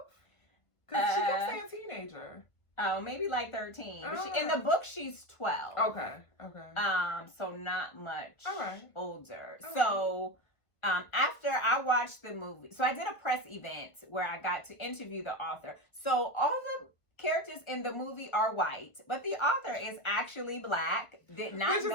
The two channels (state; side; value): late; right; 1.5 ms